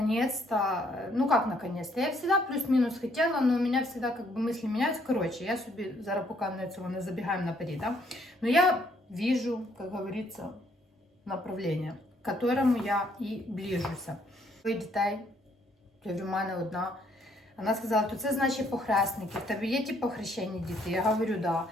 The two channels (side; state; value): both; normal; correlation 0.68